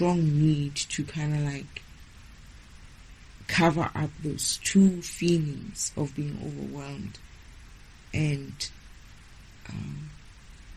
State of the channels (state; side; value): identical; both; correlation 1.00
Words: need to kind of like cover up those two feelings of being overwhelmed, and